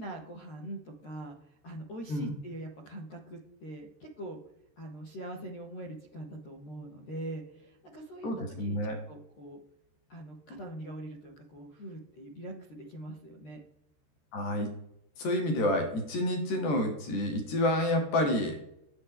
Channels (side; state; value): right; late; 14 ms